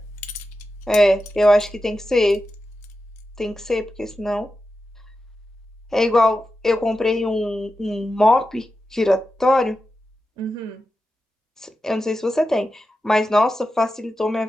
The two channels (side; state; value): both; normal; correlation 0.91